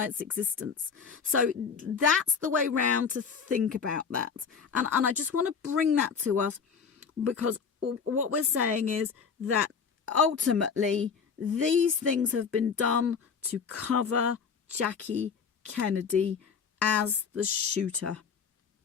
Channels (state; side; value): quieter; right; 6.2 dB